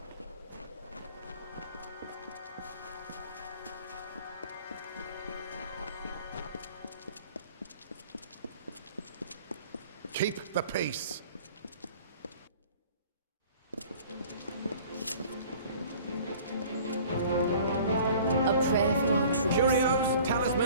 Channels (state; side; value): inverted; both; correlation -0.49